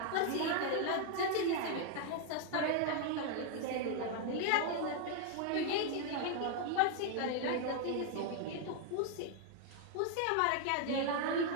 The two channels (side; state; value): both; different; correlation 0.00